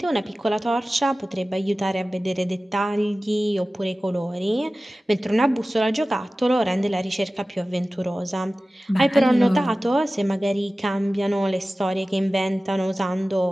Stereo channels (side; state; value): both; normal; correlation 0.96